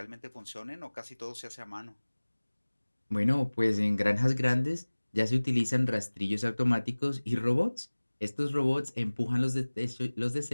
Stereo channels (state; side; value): inverted; both; correlation -1.00